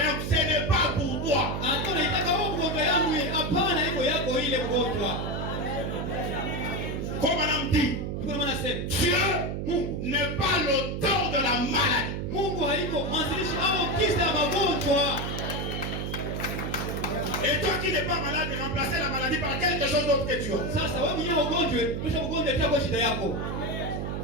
ce n'est pas pour toi. Hata unaitaka wewe mgonjwa yangu, hapana, iko yako ile mgonjwa. Comme madame dit, Dieu n'est pas l'auteur de la maladie. Mungu haiko mwanzilishi au kisa magonjwa. Et toi qui n'es pas malade, remplacer la maladie par quelque chose d'autre que tu as. Sasa wewe mwenyewe ugonjwe, kisha ugonjwe itakuwa shida yako.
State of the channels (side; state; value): right; noise; hum, 3 dB below the sound